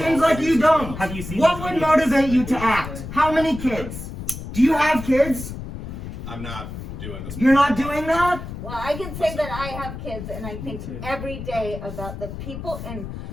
seems like you don't. Have you seen What those would videos? motivate you to act? How many kids? Do you have kids? I'm not doing this. You're not doing that? Well, I can say that I have kids, and I think too. every day about the people in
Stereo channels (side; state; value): left; noise; rumble, 9 dB below the sound